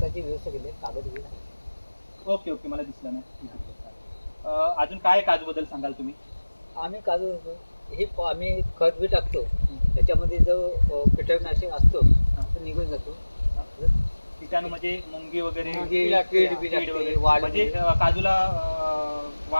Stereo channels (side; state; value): both; inverted; correlation -1.00